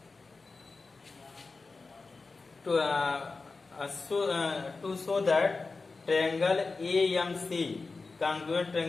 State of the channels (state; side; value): quieter; right; 4.0 dB